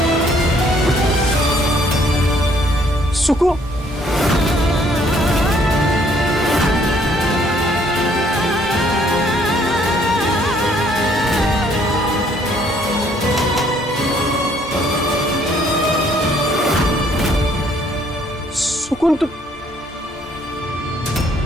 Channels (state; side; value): normal; both; correlation 0.64